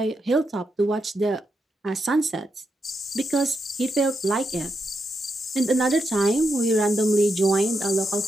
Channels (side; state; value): both; normal; correlation 0.83